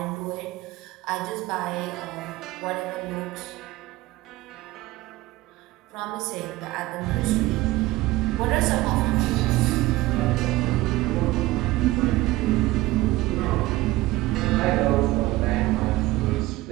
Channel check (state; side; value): quieter; left; 18.4 dB